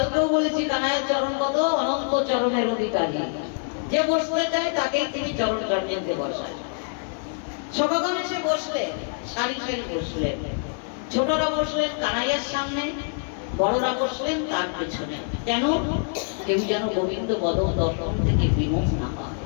বলেছি কানাইয়ের চরণ কত অনন্ত চরণের অধিকারী, যে বসতে চায় তাকে তিনি চরণ কান্ডিতে বসায়। সখাগণ এসে বসলেন, সারি সারি বসলেন। ছোটরা বসলেন কানাইয়ের সামনে, বড়রা বসলেন তার পেছনে। কেন? কেউ যেন গোবিন্দ বদন দর্শন থেকে বিমুখ না হয়।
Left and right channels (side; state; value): right; silent; 62 dB below the other